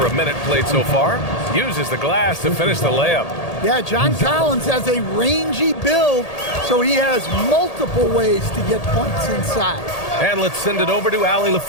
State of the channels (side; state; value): right; late; 1.8 ms